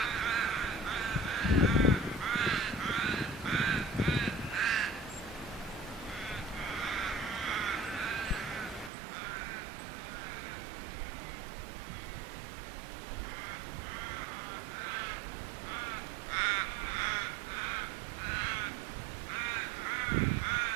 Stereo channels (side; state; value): left; drops out; at 8.9 s